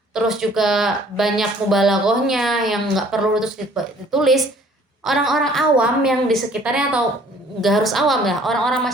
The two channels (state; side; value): normal; both; correlation 0.56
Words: terus juga banyak mubalaghahnya yang nggak perlu terus ditulis. Orang-orang awam yang di sekitarnya, atau nggak harus awam ya, orang-orang